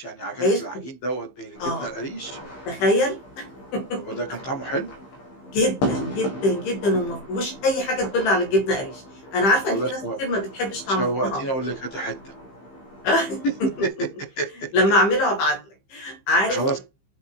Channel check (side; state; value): right; late; 15 ms